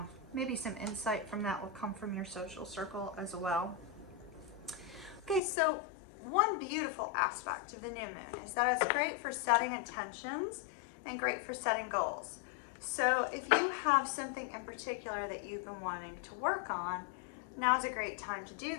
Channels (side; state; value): right; drops out; at 5.4 s